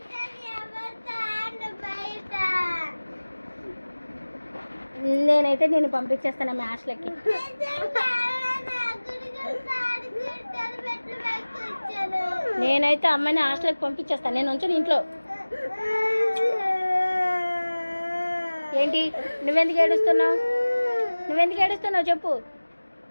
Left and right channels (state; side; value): inverted; both; correlation -1.00